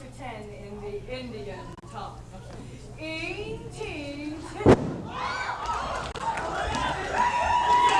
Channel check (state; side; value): identical; both; correlation 1.00